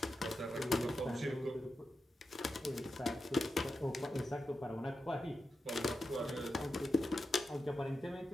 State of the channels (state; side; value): normal; both; correlation 0.89